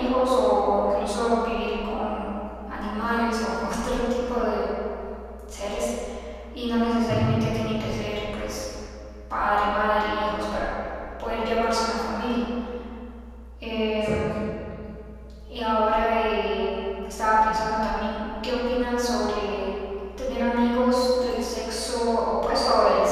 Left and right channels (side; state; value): both; identical; correlation 1.00